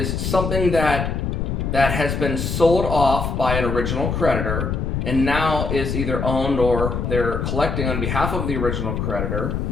something that has been sold off by an original creditor and now is either owned or they're collecting on behalf of the original creditor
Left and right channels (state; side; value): noise; left; rumble, 2 dB below the sound